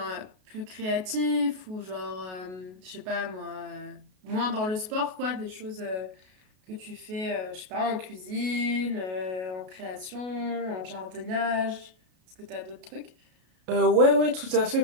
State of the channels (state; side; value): late; left; 32 ms